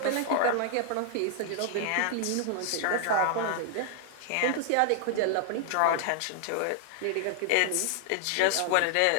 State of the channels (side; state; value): both; different; correlation 0.00